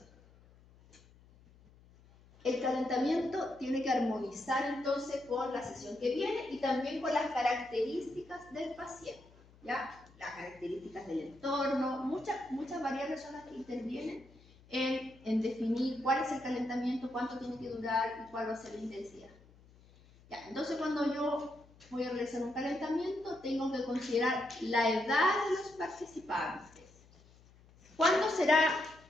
El calentamiento tiene que armonizar entonces con la sesión que viene y también con las características del paciente, ¿ya? Las características del entorno, muchas variables son las que intervienen en definir cuál es el calentamiento, cuánto tiene que durar y cuál va a ser la intensidad. Ya, entonces cuando yo voy a realizar un calentamiento, tengo que considerar la edad de los participantes. ¿Cuánto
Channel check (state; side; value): noise; left; hum, 26 dB below the sound